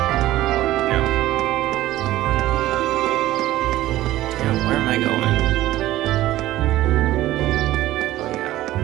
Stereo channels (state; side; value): quieter; left; 15.3 dB